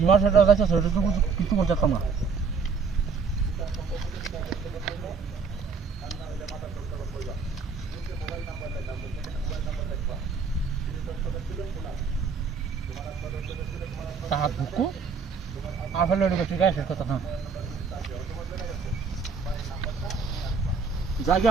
সেটা যাইতে সেটা তো কিছু করতাম না তাহার বুকু আফেল ঠিক আছে কথা না জায়গা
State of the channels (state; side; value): quieter; left; 5.3 dB